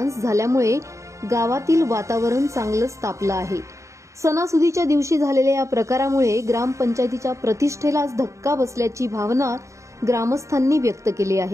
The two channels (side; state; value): left; late; 0.15 ms